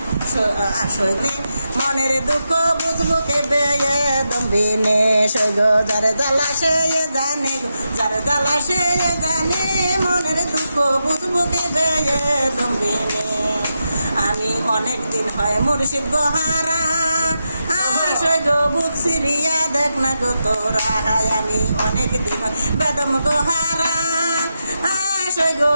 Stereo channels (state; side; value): inverted; both; correlation -0.87